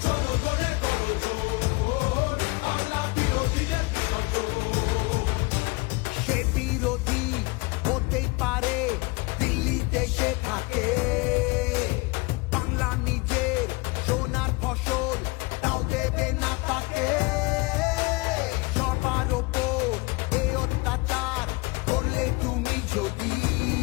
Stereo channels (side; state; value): right; quieter; 26.0 dB